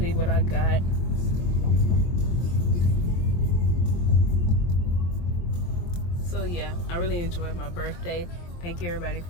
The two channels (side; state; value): right; late; 23 ms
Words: what I got. So yeah, I really enjoyed my birthday. Thank you everybody